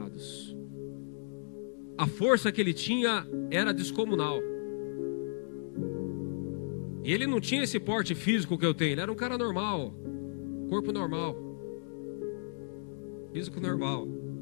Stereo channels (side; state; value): right; silent; digital silence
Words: A força que ele tinha era descomunal. E ele não tinha esse porte físico que eu tenho. Ele era um cara normal, corpo normal, físico normal.